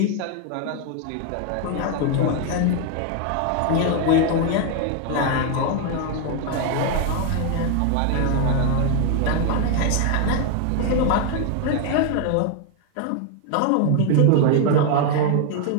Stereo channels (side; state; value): both; different; correlation 0.01